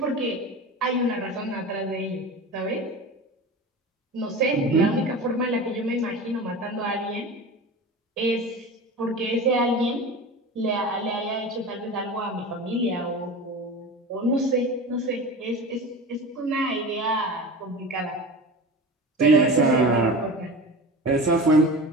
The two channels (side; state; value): both; normal; correlation 0.31